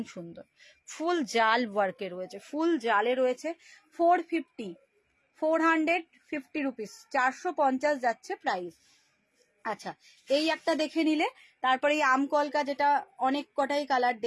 সুন্দর। ফুল জাল ওয়ার্কে রয়েছে, ফুল জালে রয়েছে। 450 রুপিস, 450 যাচ্ছে প্রাইস। আচ্ছা এই একটা দেখে নিলে, তারপরে এই আম কলকা, যেটা অনেক কটাই কালার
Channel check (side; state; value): both; identical; correlation 1.00